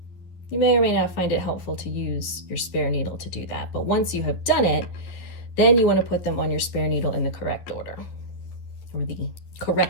You may or may not find it helpful to use your spare needle to do that, but once you have done it, then you want to put them on your spare needle in the correct order, or the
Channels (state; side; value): late; right; 11 ms